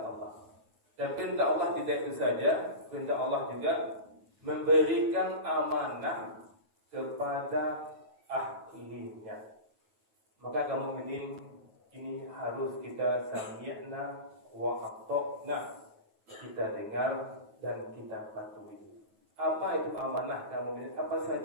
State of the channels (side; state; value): left; late; 9.3 ms